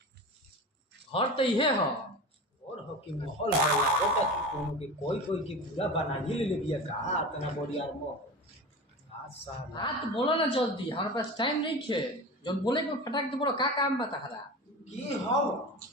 घर तो इहे हो और हो कि माहौल है लागत कि कोनो के कोई के पूरा बना ही ले बिया का तना बड़ी यार मो साला हाँ तो बोलो ना जल्दी हमारे पास टाइम नहीं है जब बोले को फटाक तो बोलो का काम बता हरा की हो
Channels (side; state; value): both; normal; correlation 0.30